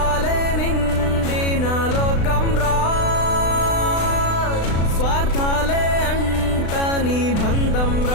నిండిన లోకం రా స్వార్థాలే అంటని బంధం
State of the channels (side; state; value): right; late; 36 ms